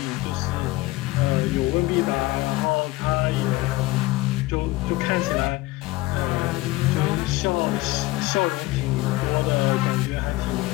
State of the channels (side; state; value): right; quieter; 19.5 dB